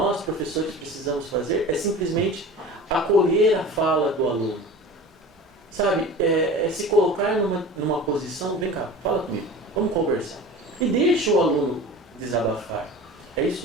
professores, precisamos fazer é simplesmente acolher a fala do aluno. Sabe, se colocar numa posição, vem cá, fala comigo, vamos conversar. E deixa o aluno desabafar. É isso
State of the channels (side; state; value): both; normal; correlation 0.37